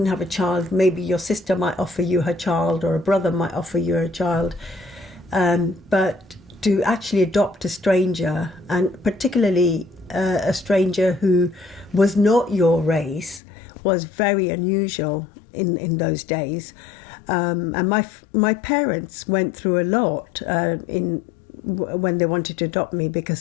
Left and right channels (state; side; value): drops out; right; at 13.4 s